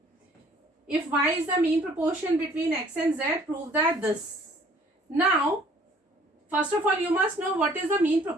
If y is the mean proportion between x and z, prove that this. Now, first of all you must know what is the mean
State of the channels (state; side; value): normal; both; correlation 0.57